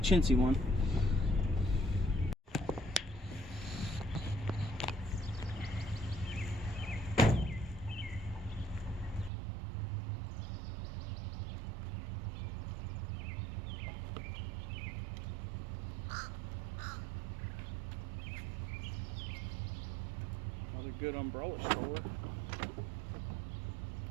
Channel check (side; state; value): left; drops out; at 9.3 s